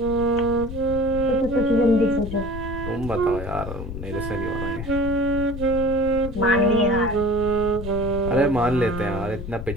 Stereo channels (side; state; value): left; noise; rumble, 8 dB below the sound